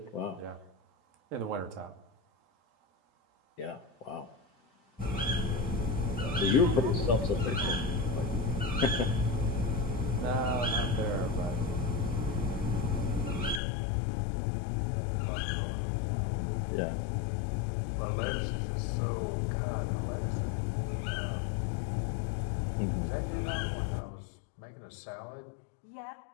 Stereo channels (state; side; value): drops out; right; at 13.6 s